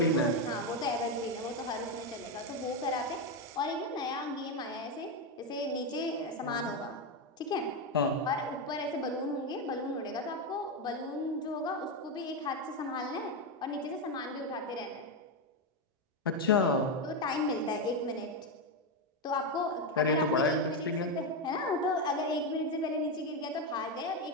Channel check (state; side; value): normal; both; correlation 0.08